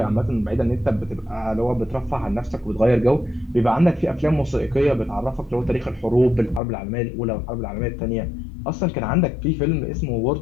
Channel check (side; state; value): right; drops out; at 6.6 s